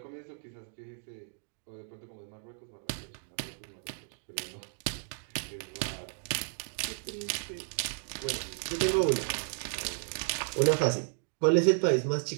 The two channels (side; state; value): left; silent; digital silence